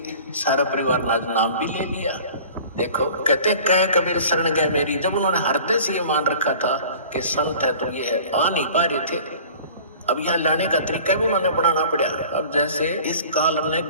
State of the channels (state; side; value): inverted; both; correlation -0.45